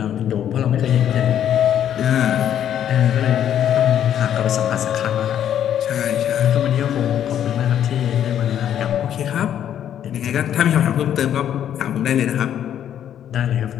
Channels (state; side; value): quieter; right; 10.1 dB